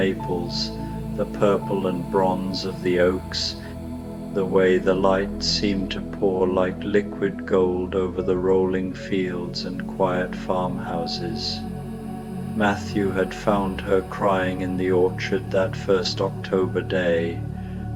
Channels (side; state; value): both; identical; correlation 1.00